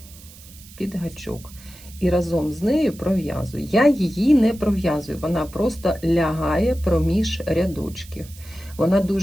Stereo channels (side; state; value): right; noise; hiss, 20 dB below the sound